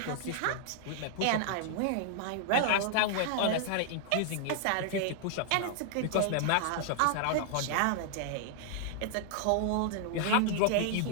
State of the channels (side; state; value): both; different; correlation -0.01